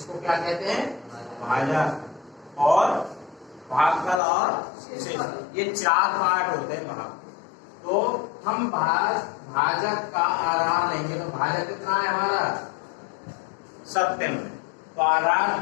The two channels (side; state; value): right; drops out; at 4.2 s